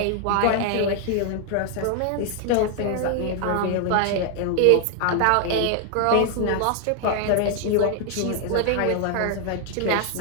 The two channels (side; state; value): both; different; correlation 0.00